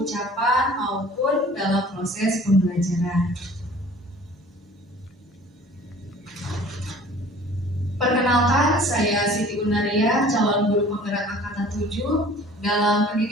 maupun dalam proses pembelajaran. Perkenalkan, saya Siti Unaria, calon guru penggerak angkatan 7. Dalam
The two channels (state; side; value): normal; both; correlation 0.48